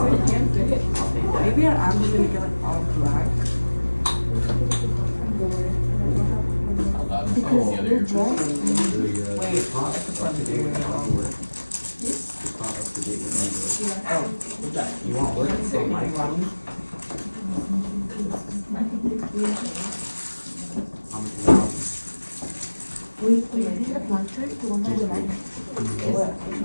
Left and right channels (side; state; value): both; inverted; correlation -1.00